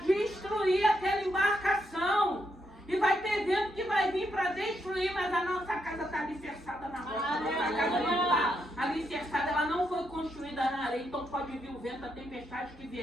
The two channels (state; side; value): normal; both; correlation 0.80